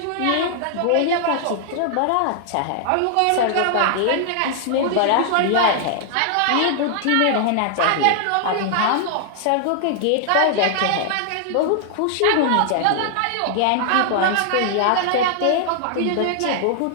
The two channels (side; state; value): both; different; correlation -0.01